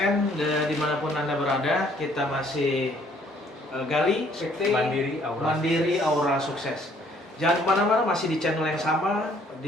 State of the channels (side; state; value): both; normal; correlation 0.62